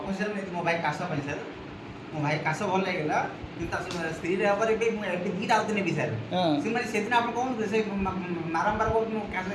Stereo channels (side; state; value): both; identical; correlation 1.00